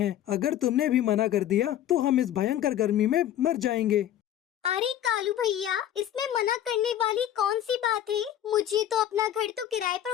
अगर तुमने भी मना कर दिया तो हम इस भयंकर गर्मी में मर जाएंगे। अरे कालू भैया, इसमें मना करने वाली कौन सी बात है? मुझे तो अपना घर तो किराए पर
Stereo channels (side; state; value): right; quieter; 11.4 dB